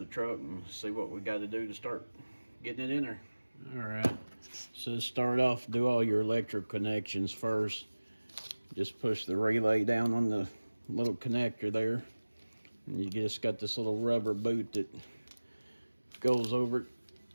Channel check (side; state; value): both; inverted; correlation -1.00